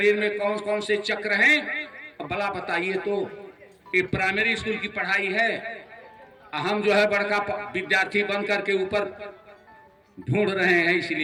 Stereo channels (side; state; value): both; identical; correlation 1.00